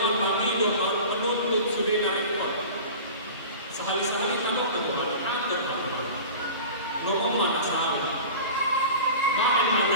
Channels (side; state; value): both; inverted; correlation -0.36